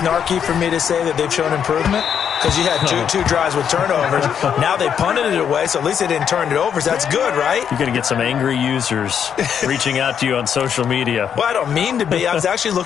for me to say that they've shown improvement? Because you had two drives with turnovers. Now they punted it away, so at least they didn't turn it over. So that's good, right? You're going to get some angry users reaching out to you on social media. Well, I don't mean to be. I was actually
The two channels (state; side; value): quieter; right; 8.1 dB